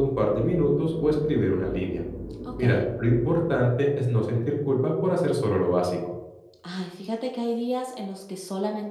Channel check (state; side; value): identical; both; correlation 1.00